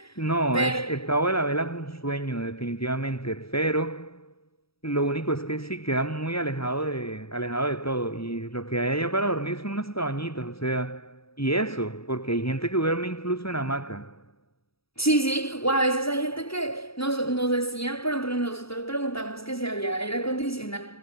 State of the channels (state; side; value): late; right; 0.77 ms